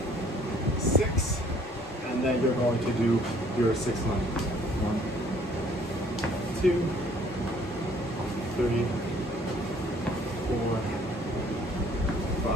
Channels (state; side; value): normal; both; correlation 0.59